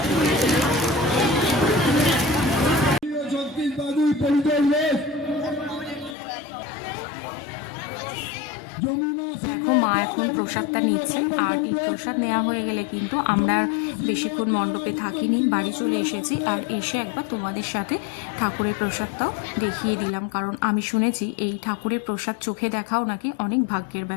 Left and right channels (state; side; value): drops out; right; at 6.2 s